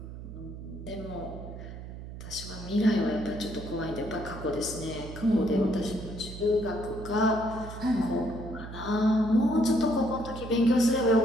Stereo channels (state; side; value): noise; right; hum, 11 dB below the sound